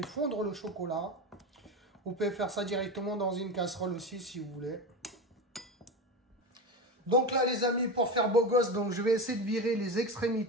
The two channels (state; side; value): normal; both; correlation 0.21